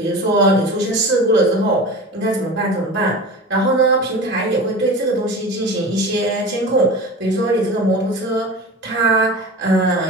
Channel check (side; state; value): both; normal; correlation 0.33